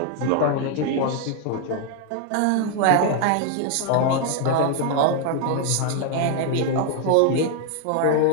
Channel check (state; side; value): different; both; correlation 0.00